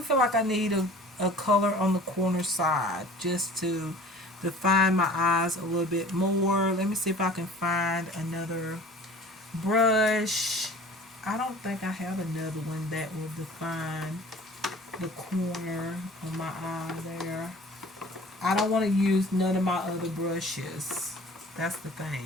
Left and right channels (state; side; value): normal; both; correlation 0.45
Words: like I need a color on the corner side just to define my eyes a little bit more. Let me see if I can find another brush. I don't think I have another one that will define the corner of my eye there. I don't want to use none of my other brushes. That's the